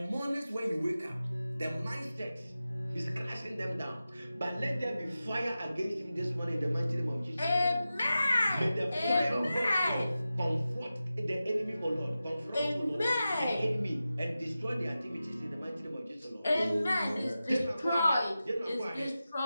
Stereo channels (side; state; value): both; inverted; correlation -0.93